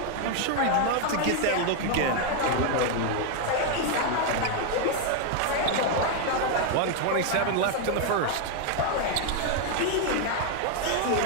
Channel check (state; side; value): different; both; correlation 0.01